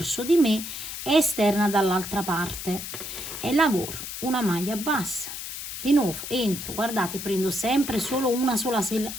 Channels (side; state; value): left; noise; hiss, 8 dB below the sound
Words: di me e esterna dall'altra parte e lavoro una maglia bassa. Di nuovo entro, guardate, prendo sempre solo una sola